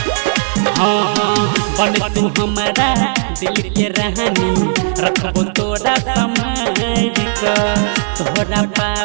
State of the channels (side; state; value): left; silent; 62 dB below the other